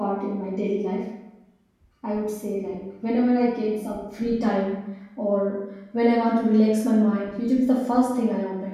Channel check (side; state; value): both; identical; correlation 1.00